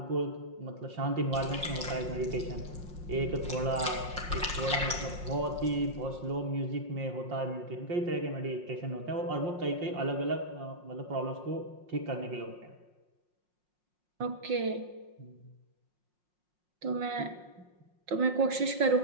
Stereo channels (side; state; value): left; late; 5.6 ms